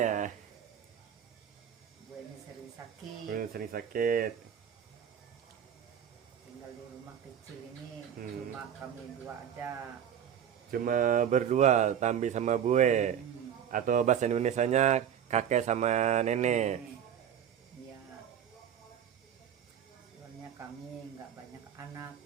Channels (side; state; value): left; quieter; 9.0 dB